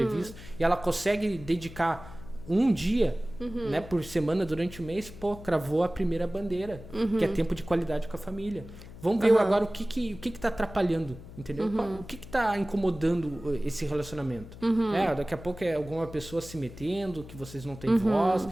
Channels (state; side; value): noise; left; hum, 16 dB below the sound